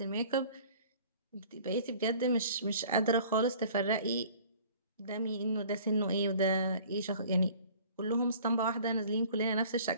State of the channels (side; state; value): both; inverted; correlation -0.49